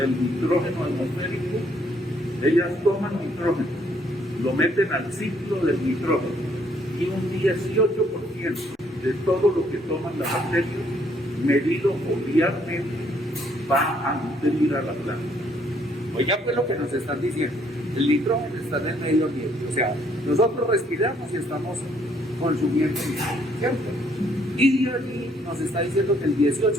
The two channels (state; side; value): normal; both; correlation 0.67